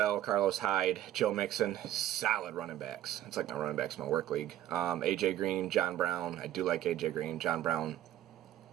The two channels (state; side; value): quieter; left; 12.7 dB